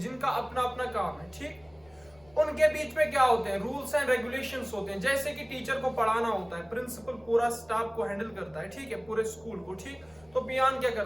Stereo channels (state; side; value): noise; left; rumble, 28 dB below the sound